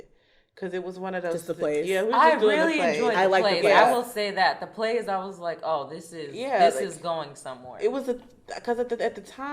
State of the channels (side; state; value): both; identical; correlation 1.00